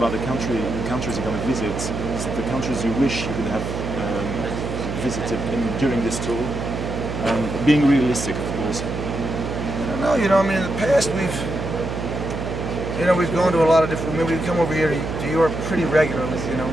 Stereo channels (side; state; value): right; noise; hum, 5 dB below the sound